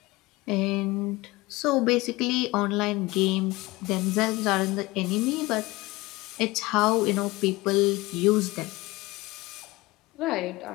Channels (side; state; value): right; quieter; 21.2 dB